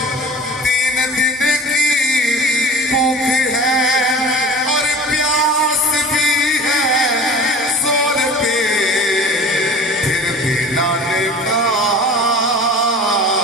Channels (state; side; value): normal; both; correlation 0.40